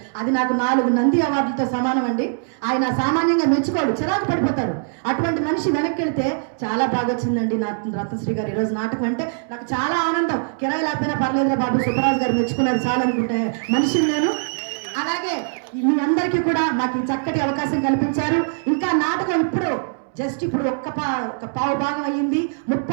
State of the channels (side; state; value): left; silent; 64 dB below the other